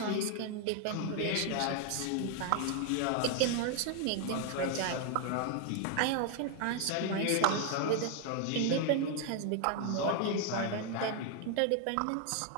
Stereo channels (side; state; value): both; different; correlation 0.00